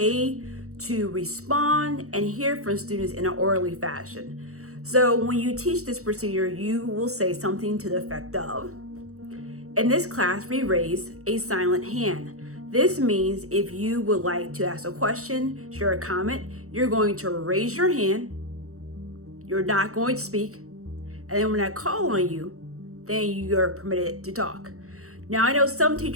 to respond and hear from students in an orderly fashion. So when you teach this procedure, you will say something to the effect of, in this class, we raise a silent hand. This means if you would like to ask a question, share a comment, you're going to raise your hand, you're not going to speak, and then when I call on you, then you're permitted to talk. Now, I know some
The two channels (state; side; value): late; left; 0.64 ms